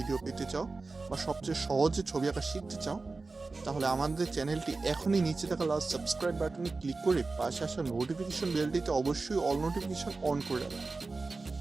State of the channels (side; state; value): left; quieter; 3.8 dB